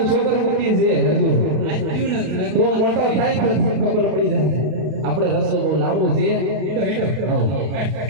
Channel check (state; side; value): late; left; 32 ms